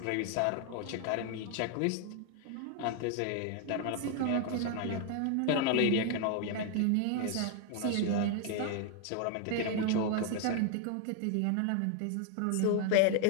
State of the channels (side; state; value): both; different; correlation 0.00